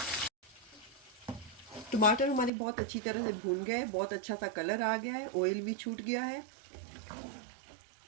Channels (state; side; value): drops out; left; at 2.5 s